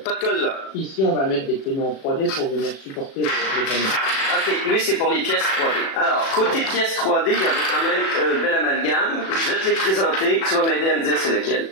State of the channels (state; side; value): late; right; 37 ms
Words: de colle là. Ici, on va mettre des panneaux en 3D pour venir supporter les panneaux. Ok, lui c'est pour les pièces 3D. Alors, côté pièces 3D, il y avait quand même un bel amalgame. Je vais te les présenter, tu vas m'aider à me dire c'est lequel.